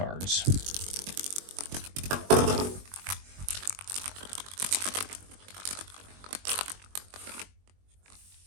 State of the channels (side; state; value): left; late; 21 ms